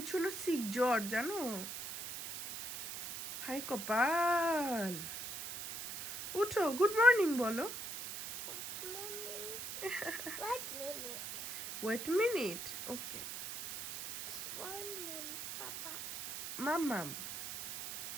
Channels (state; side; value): noise; right; hiss, 6 dB below the sound